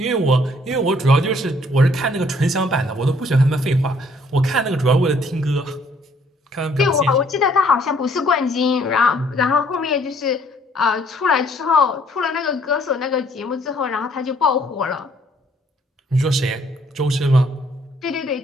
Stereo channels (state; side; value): normal; both; correlation 0.63